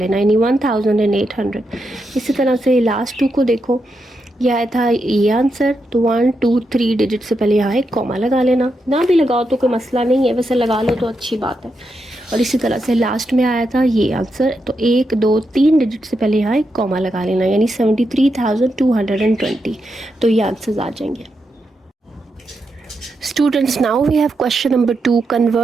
यानी 1800। इसी तरह से लास्ट 2 को देखो, यह आया था ये आंसर, तो 1 2 3 डिजिट से पहले यहाँ एक कॉमा लगा लेना। ना भी लगाओ तो कोई मसला नहीं है, वैसे लगा लो तो अच्छी बात है। और इसी तरह से लास्ट में आया था ये आंसर, तो 1 2 3 डिजिट से पहले यहाँ एक कॉमा लगा लेना, यानी 73,220। तो ये आंसर्स आ जाएंगे। Students, now we have question number 2.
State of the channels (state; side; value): normal; both; correlation 0.84